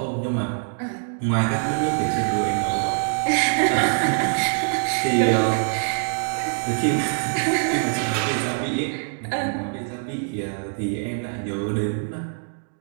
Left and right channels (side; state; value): left; silent; digital silence